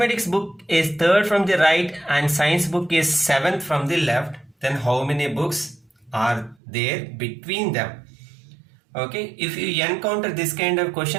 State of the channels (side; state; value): left; drops out; at 6.6 s